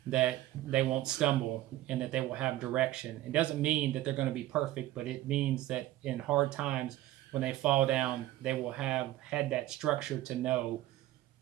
that they won't stumble and that they will have direction. It doesn't mean that they're going to be perfect, but it means that in hard times, when they fall down, they will have had that structure to know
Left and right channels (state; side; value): quieter; left; 15.3 dB